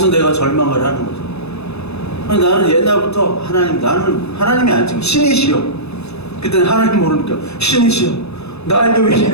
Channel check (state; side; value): late; right; 0.79 ms